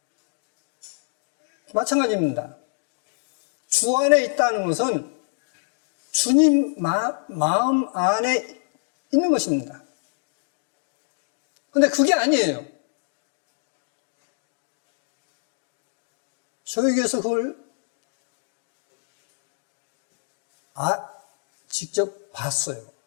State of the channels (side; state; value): right; silent; digital silence